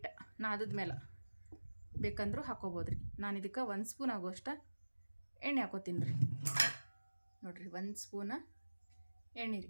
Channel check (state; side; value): inverted; both; correlation -1.00